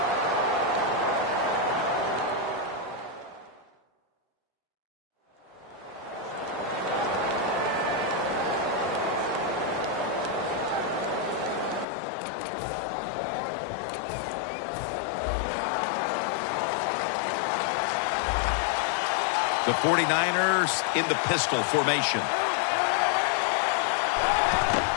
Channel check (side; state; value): right; drops out; at 11.9 s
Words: The 49ers in the pistol formation.